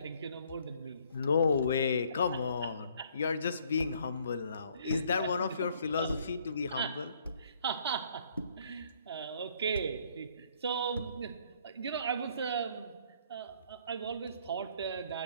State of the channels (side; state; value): both; inverted; correlation -0.63